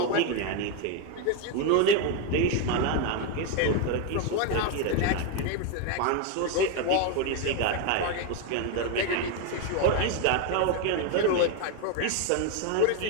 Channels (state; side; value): different; both; correlation 0.01